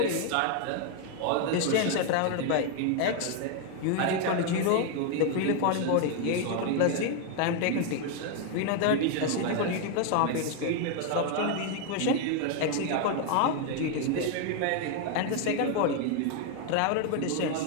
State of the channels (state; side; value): different; both; correlation 0.01